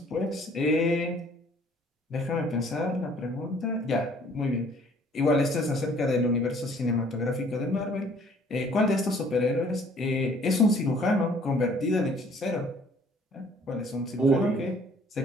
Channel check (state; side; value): normal; both; correlation 0.58